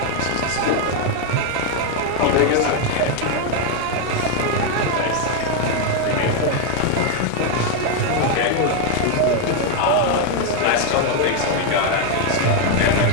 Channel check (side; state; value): both; different; correlation 0.01